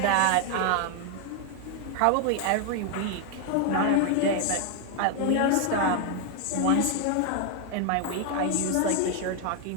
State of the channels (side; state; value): both; different; correlation 0.01